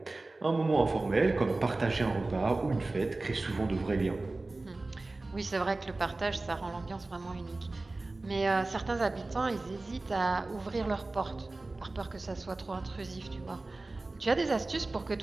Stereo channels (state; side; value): quieter; left; 3.2 dB